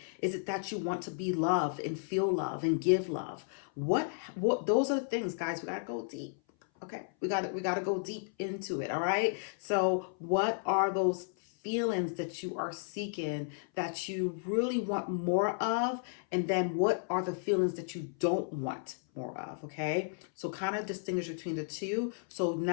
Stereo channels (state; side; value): silent; right; 56 dB below the other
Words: Is it that you want to be loved and feel love and give love? What those are the things, guys, we got to go deep. Okay, we got to go deep into it, all right? So what are those feelings that you are seeking that you really want more of, and then what are the feelings that you don't want more of? Okay, so kind of distinguish between the two. So